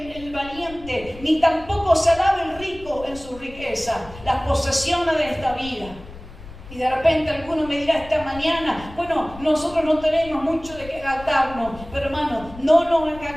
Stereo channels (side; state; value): left; noise; rumble, 17 dB below the sound